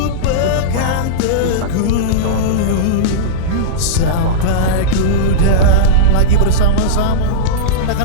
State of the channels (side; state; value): both; different; correlation -0.05